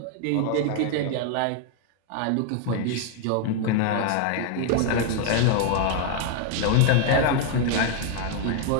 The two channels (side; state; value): both; different; correlation 0.00